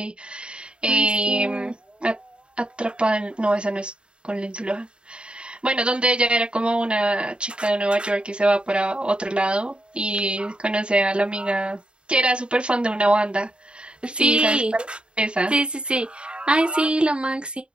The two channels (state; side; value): late; left; 0.053 ms